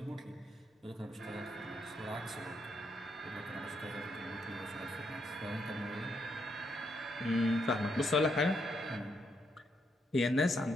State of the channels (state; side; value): normal; both; correlation 0.77